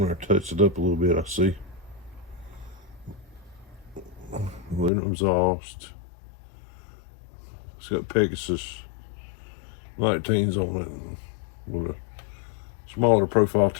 there and touch it up a little bit, I see. Aluminum exhaust. It's got Pegasus 19s on it with a smaller profile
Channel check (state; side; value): drops out; right; at 4.9 s